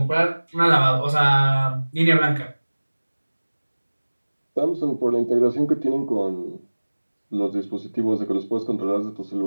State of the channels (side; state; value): both; inverted; correlation -1.00